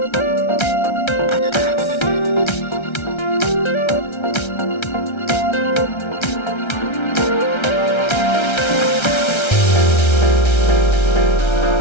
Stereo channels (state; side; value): late; right; 1.3 ms